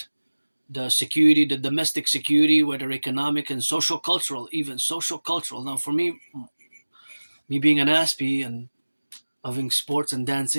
the security, the domestic security, whether economic and social cultural, even social cultural. Now, for me being an Aspie and loving sports and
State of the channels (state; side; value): inverted; both; correlation -1.00